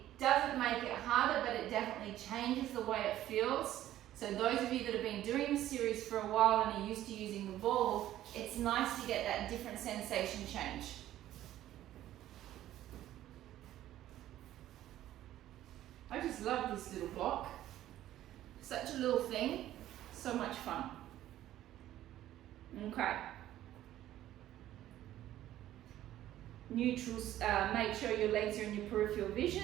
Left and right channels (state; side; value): quieter; left; 13.2 dB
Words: doesn't make it harder, but it definitely changes the way it feels. So those of you that have been doing this series for a while and are used to using the ball, it's nice to get that different sensation change. I just love this little block. Such a little thing, so much fun. Okay. Neutral, make sure your legs are in your peripheral